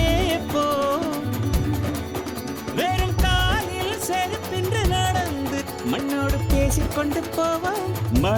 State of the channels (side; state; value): both; identical; correlation 1.00